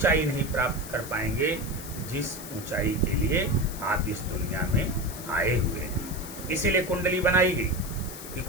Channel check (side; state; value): left; noise; hiss, 12 dB below the sound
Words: नहीं प्राप्त कर पाएंगे जिस ऊंचाई के लिए आप इस दुनिया में आए हुए हैं। इसीलिए कुंडली बनाई गई कि